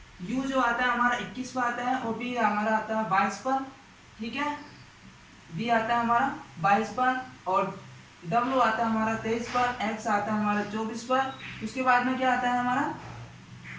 यू जो आता है हमारा 21 पर आता है और बी हमारा आता है 22 पर। ठीक है, बी आता है हमारा 22 पर और डब्ल्यू आता है हमारा 23 पर, एक्स आता है हमारा 24 पर। उसके बाद में क्या आता है हमारा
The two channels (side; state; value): both; identical; correlation 1.00